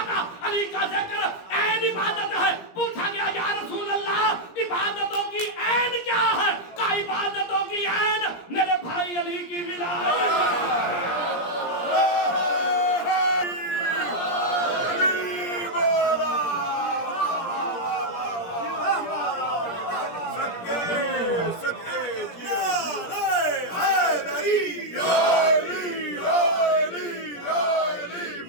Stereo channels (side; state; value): right; late; 17 ms